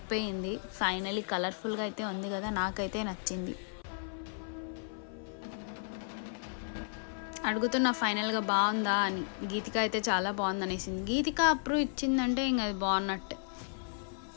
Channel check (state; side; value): silent; right; 55 dB below the other